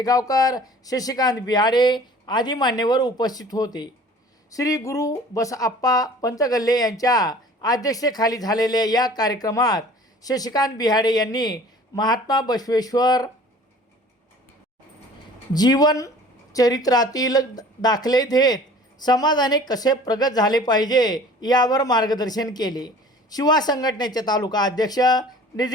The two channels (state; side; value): normal; both; correlation 0.47